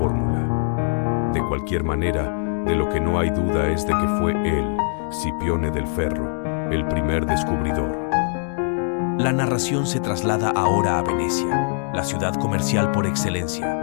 De cualquier manera, de lo que no hay duda es de que fue él, Scipione del Ferro, el primer descubridor. La narración se traslada ahora a Venecia, la ciudad comercial por excelencia.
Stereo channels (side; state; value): right; silent; digital silence